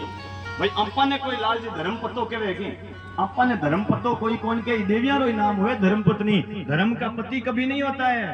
भाई अपा ने कोई लाल जी धर्म पतो के वेगी, अपा ने धर्म पतो कोई कौन के देवियां रो नाम हुए धर्म पत्नी। धर्म का पति कभी नहीं होता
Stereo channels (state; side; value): identical; both; correlation 1.00